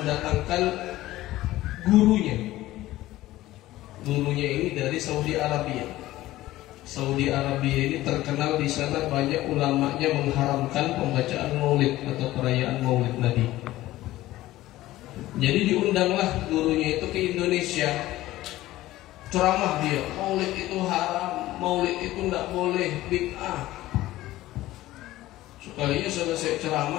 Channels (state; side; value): quieter; right; 16.1 dB